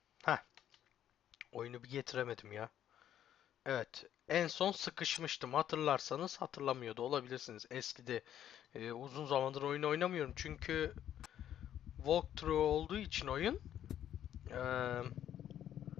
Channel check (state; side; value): quieter; right; 10.7 dB